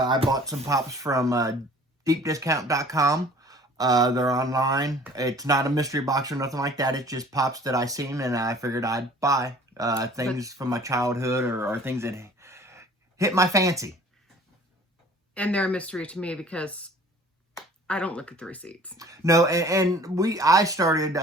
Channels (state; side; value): normal; both; correlation 0.49